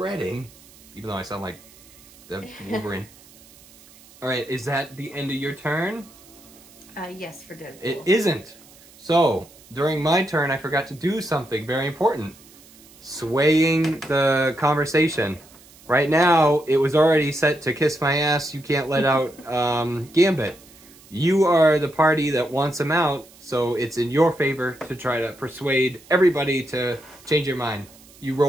Even though I sound like the Wolverine. All right, is that the end of your turn? Yes, for Deadpool. It isn't. So, during my turn, I forgot to do something very important. Swaying the conversation. Right now, it was already set to kiss my ass, you can't let out Gambit. You are the party that wants him out, so it's in your favor to try to persuade everybody to change your mind. You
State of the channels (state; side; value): noise; right; hiss, 24 dB below the sound